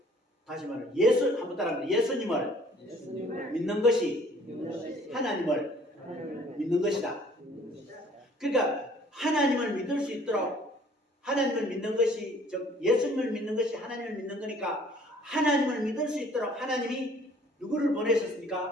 다시 말해 한번 따라합니다. 예수님을 믿는 것이 하나님을 믿는 것이다. 그러니까 하나님을 믿을 수 있도록 하나님을 믿는 것이 즉 예수님을 믿는 것이 하나님을 믿는 거니까 하나님을 믿을 수 있도록 하나님이 누구를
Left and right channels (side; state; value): both; normal; correlation 0.56